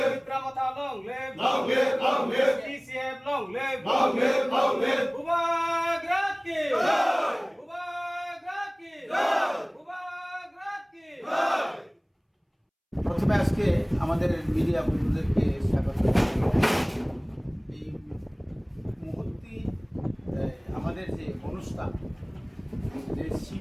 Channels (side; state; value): both; identical; correlation 1.00